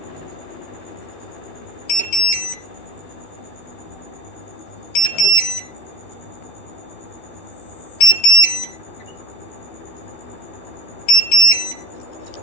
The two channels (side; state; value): right; late; 12 ms